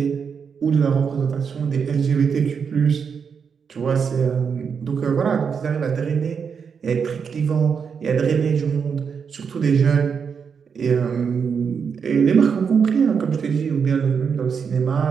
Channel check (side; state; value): left; quieter; 6.4 dB